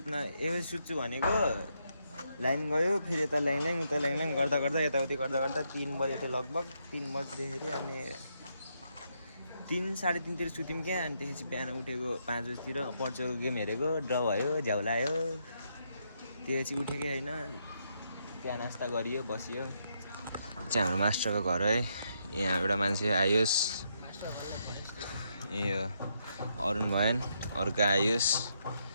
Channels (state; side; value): inverted; both; correlation -0.78